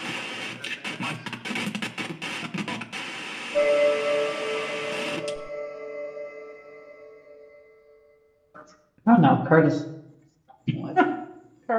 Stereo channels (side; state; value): both; identical; correlation 1.00